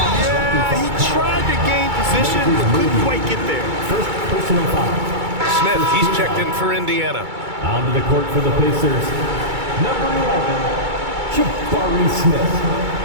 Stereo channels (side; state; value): left; late; 2.3 ms